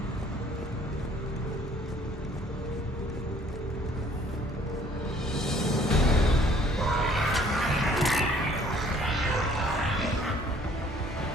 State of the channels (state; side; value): normal; both; correlation 0.58